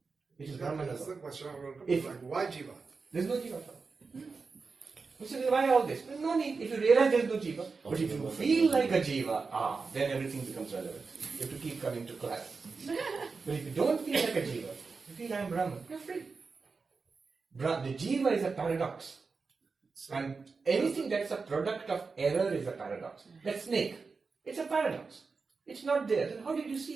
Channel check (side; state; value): left; quieter; 4.6 dB